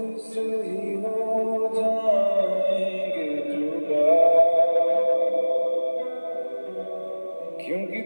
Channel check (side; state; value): both; inverted; correlation -1.00